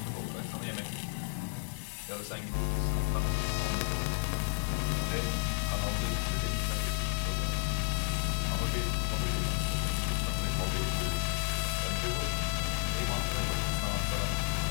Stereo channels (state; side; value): silent; right; digital silence